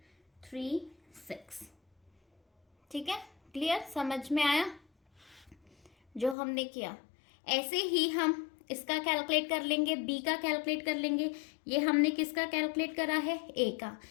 ठीक है। क्लियर, समझ में आया जो हमने किया। ऐसे ही हम इसका कैलकुलेट कर लेंगे, बी का कैलकुलेट कर लेंगे। ये हमने किसका कैलकुलेट करा है ए का।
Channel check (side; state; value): right; drops out; at 6.4 s